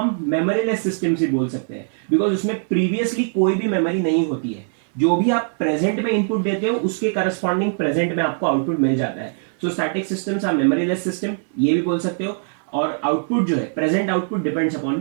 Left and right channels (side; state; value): left; silent; 59 dB below the other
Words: मेमोरीलेस सिस्टम्स भी बोल सकते हैं, बिकॉज उसमें प्रीवियसली कोई भी मेमोरी नहीं होती है। जो भी आप प्रेजेंट में इनपुट देते हो उसके करस्पॉन्डिंग प्रेजेंट में आपको आउटपुट मिल जाता है। So static systems are memoryless system, ये भी बोल सकते हो। और आउटपुट जो है, present output depends upon